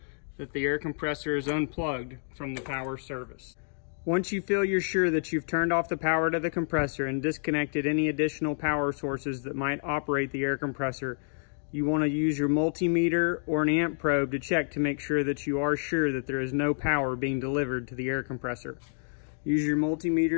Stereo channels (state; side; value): silent; right; digital silence